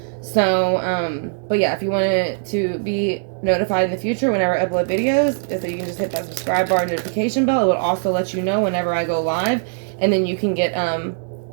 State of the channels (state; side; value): silent; left; digital silence